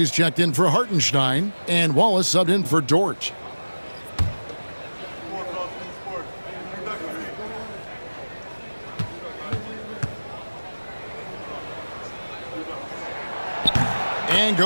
checked in for Hartenstein, and Wallace subbed in for Dort. And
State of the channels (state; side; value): inverted; both; correlation -1.00